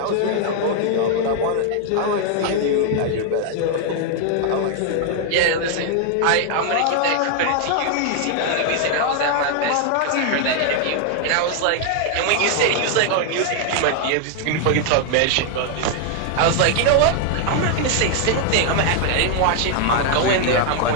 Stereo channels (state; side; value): different; both; correlation 0.00